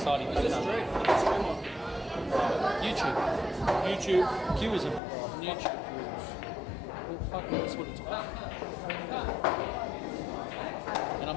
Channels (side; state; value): right; drops out; at 5.0 s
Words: It's a factor. stream. It's a stream on YouTube. YouTube. Q is a YouTube. Well, fuck, that's what it's about. And I'm